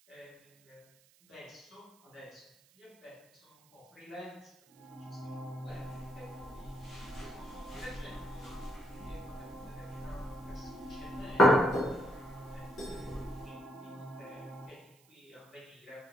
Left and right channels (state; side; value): noise; right; hiss, 29 dB below the sound